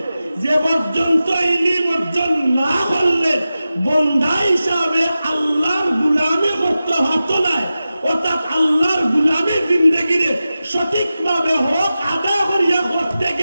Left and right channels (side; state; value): both; inverted; correlation -0.94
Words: যে পর্যন্ত ইলম অর্জন না করলে বন্দা হিসাবে আল্লাহর গুলামি করতে হতো না। অর্থাৎ আল্লাহর গুলামের জিন্দগিরে সঠিকভাবে হক আদা করিয়া করতে